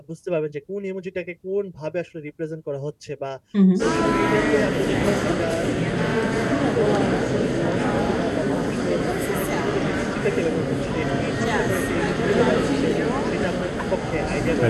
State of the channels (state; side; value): identical; both; correlation 1.00